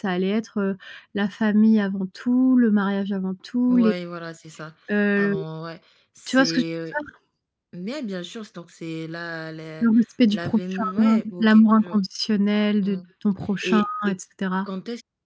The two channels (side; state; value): both; identical; correlation 1.00